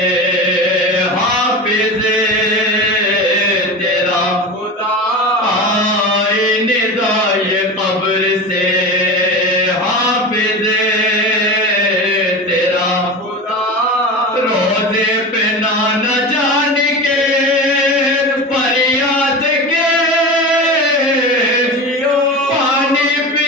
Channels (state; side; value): normal; both; correlation 0.28